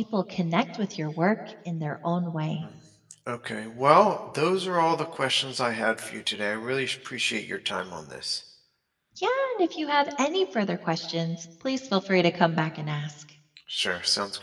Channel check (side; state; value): both; identical; correlation 1.00